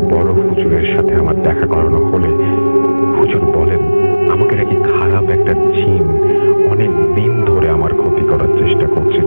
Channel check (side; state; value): both; inverted; correlation -1.00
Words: বড় হুজুরের সাথে আমার দেখা করানো হলে হুজুর বলেন আমাকে নাকি খারাপ একটা জিন অনেক দিন ধরে আমার ক্ষতি করার চেষ্টা করছে,